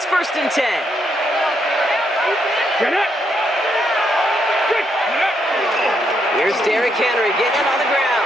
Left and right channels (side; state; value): both; normal; correlation 0.77